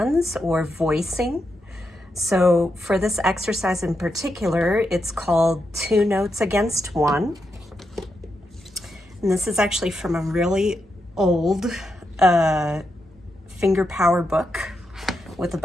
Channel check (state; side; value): normal; both; correlation 0.84